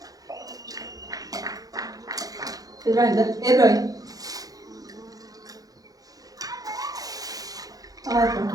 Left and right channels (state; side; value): late; left; 0.18 ms